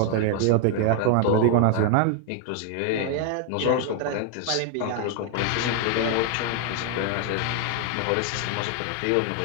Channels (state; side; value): different; both; correlation 0.00